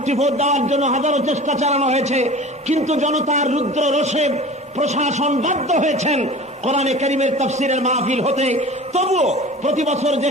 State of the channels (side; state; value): both; normal; correlation 0.39